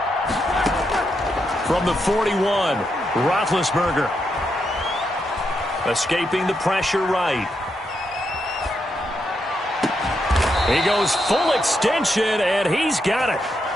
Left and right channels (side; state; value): both; normal; correlation 0.82